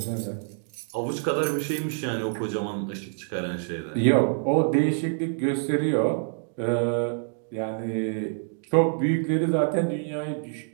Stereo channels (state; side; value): silent; left; digital silence